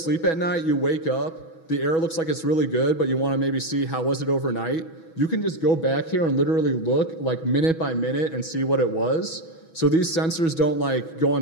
at night, you wake up, the air looks like it's really good, but you want to maybe see how was it overnight. You can just go back here and literally look minute by minute and see what it was. So these sensors don't go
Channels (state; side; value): late; right; 6.1 ms